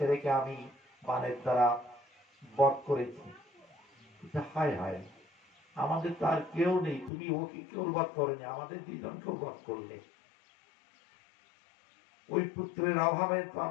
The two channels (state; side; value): drops out; right; at 7.1 s